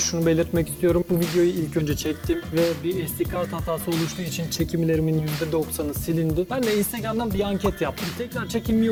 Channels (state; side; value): identical; both; correlation 1.00